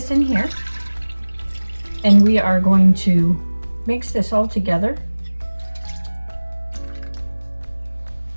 in here. And we are going to mix this all together.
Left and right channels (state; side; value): inverted; both; correlation -1.00